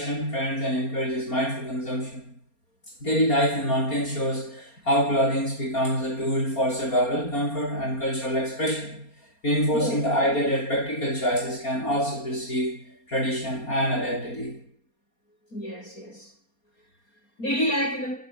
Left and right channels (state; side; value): late; right; 4.3 ms